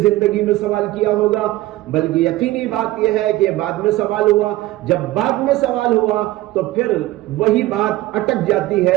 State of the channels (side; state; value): left; quieter; 16.9 dB